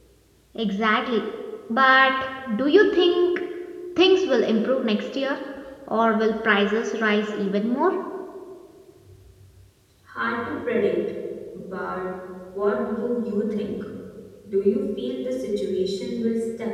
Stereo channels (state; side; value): identical; both; correlation 1.00